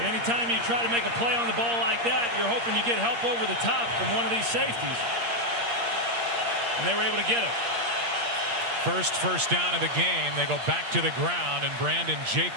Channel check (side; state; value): left; late; 8.6 ms